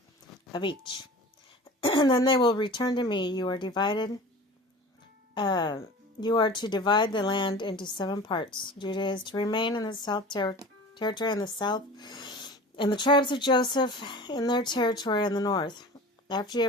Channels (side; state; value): both; normal; correlation 0.38